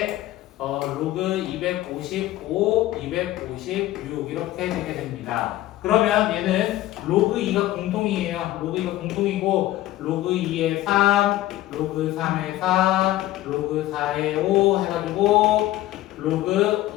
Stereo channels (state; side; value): quieter; right; 15.3 dB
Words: 로그 255, 256 이렇게 되게 됩니다. 그러면 얘는 로그 2가 공통이에요. 로그 2가 공통이고 로그 2에 3, 로그 3에 4, 로그 4에 5 해가지고 로그